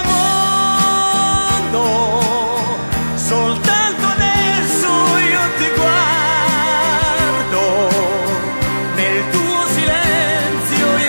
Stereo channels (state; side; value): inverted; both; correlation -1.00